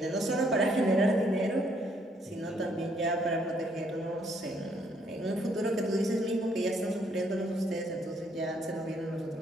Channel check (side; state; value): both; normal; correlation 0.69